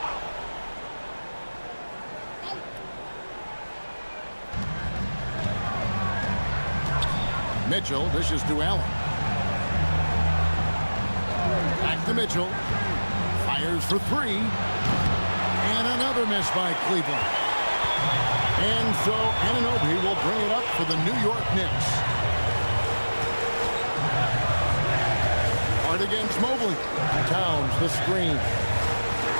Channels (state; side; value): inverted; both; correlation -1.00